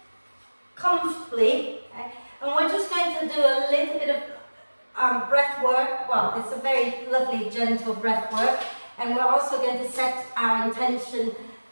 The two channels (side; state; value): both; inverted; correlation -1.00